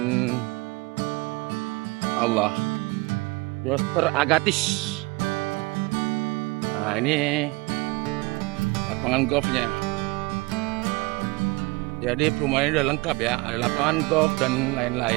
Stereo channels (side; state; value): left; quieter; 24.8 dB